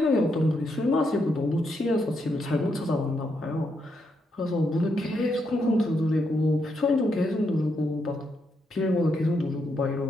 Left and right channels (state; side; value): normal; both; correlation 0.80